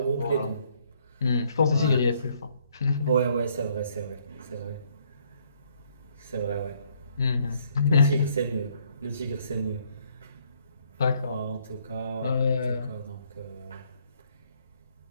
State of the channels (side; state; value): both; inverted; correlation -0.67